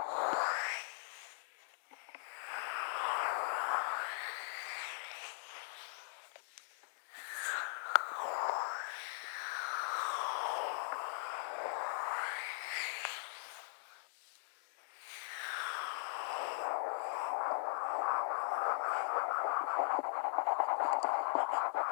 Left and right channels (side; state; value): right; silent; digital silence